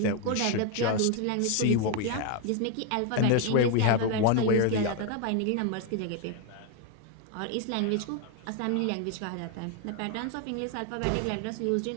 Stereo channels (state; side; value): different; both; correlation 0.01